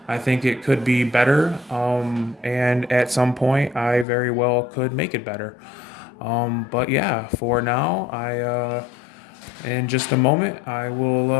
I think it could be better, and at some point, I very well could make it better. But yeah, for now, in just a moment, I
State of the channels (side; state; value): right; drops out; at 4.0 s